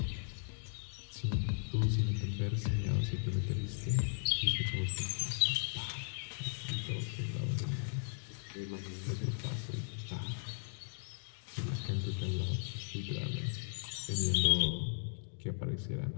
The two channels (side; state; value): right; silent; digital silence